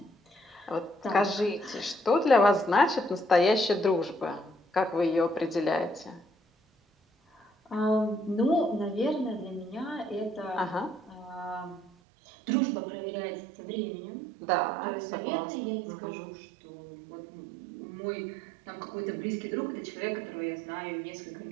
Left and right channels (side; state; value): left; drops out; at 11.9 s